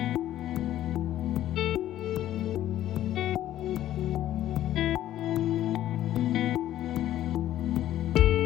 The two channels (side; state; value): right; quieter; 12.8 dB